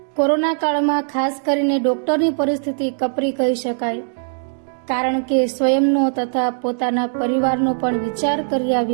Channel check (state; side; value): silent; left; digital silence